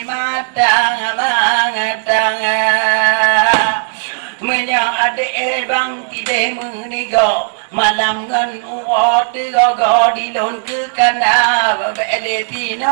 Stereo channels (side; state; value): left; silent; digital silence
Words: mà đang mình yang ada bang tidak meninggal malam ngan uat tiga di lon ke kana bele